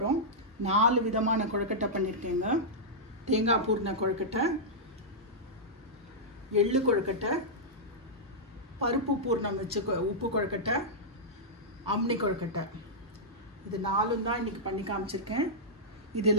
4 விதமான கொழக்கட்டை பண்ணியிருக்கேங்க. தேங்காய் பூர்ண கொழக்கட்டை, எள்ளு கொழக்கட்டை, பருப்பு பூர்ணம் வச்சு உப்பு கொழக்கட்டை, அம்னி கொழக்கட்டை. இது 4 தான் இன்றைக்கி பண்ணி காமிச்சிருக்கேன்.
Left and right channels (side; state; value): both; normal; correlation -0.10